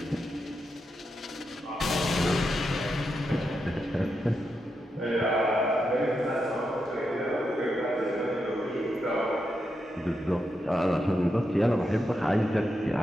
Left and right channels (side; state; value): both; normal; correlation 0.85